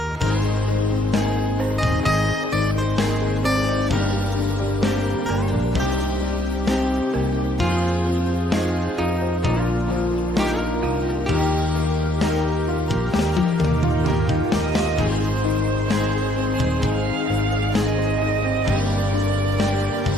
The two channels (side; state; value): both; normal; correlation 0.68